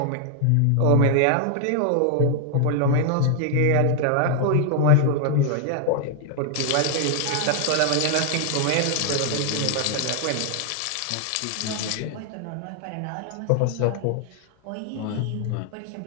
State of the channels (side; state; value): both; different; correlation 0.00